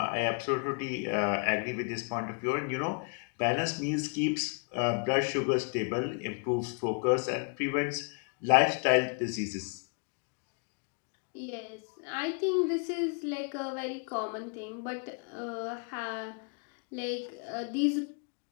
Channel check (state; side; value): quieter; right; 38.2 dB